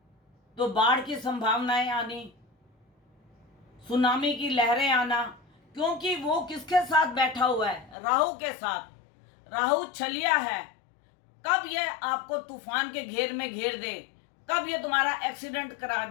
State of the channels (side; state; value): right; drops out; at 8.0 s